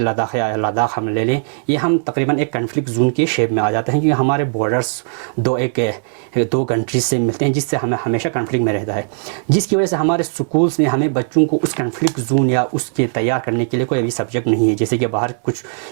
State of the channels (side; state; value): left; silent; digital silence